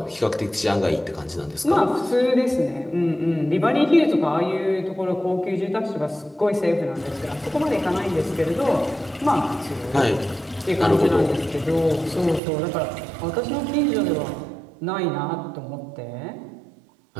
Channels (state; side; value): drops out; left; at 12.4 s